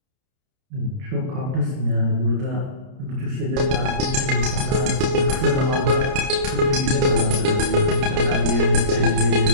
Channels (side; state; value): left; late; 30 ms